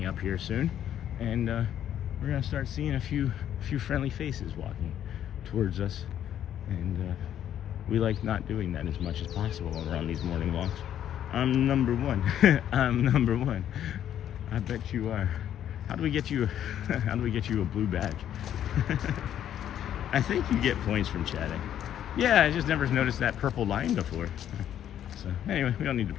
up here soon, and we're going to start seeing a few friendly faces walking towards us, and we like not doing that as much as possible when we're on these morning walks. I'm #1. I'm #1. I bet you are. How do we get you a blue badge? I think you get points from chatting. Yeah, I just never noticed that purple line before. So anyway, we don't need to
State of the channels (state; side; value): quieter; right; 10.5 dB